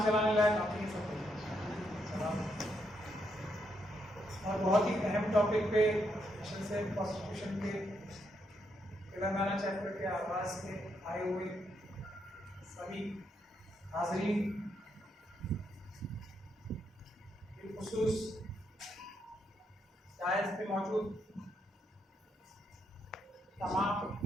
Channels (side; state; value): both; normal; correlation 0.78